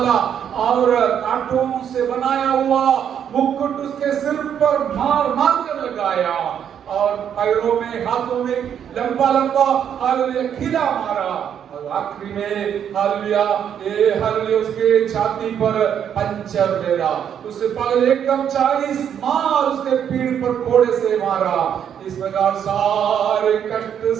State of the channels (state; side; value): quieter; left; 8.8 dB